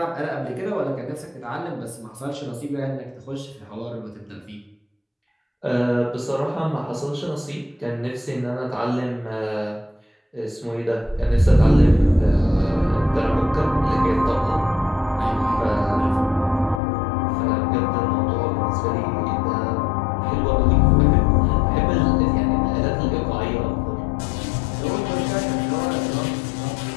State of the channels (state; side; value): drops out; right; at 16.8 s